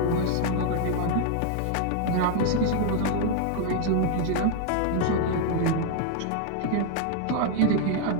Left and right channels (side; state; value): both; different; correlation 0.00